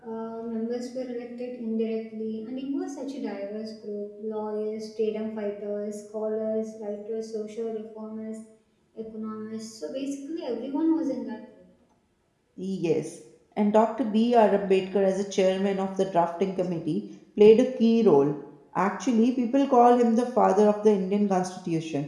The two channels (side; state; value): both; identical; correlation 1.00